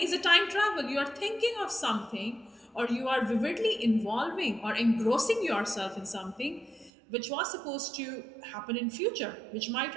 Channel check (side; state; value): left; drops out; at 6.9 s